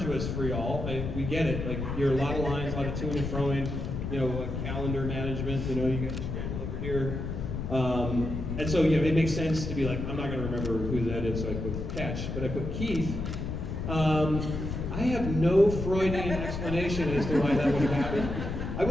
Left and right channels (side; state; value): left; noise; rumble, 4 dB below the sound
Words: for y'all. We get it. Like you're a lot of lines, a lot of to-ing and fro-ing. Calendar management. You got to scramble over here. And so it makes sense to be like, I'm not going to remember who that is, so I put Catch, but I put Keith. I have no Freudian explanation as to why that would have happened. I